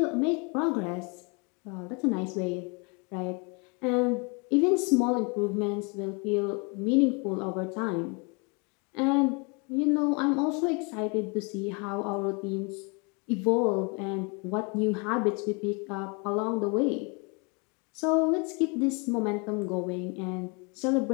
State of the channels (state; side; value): quieter; right; 32.7 dB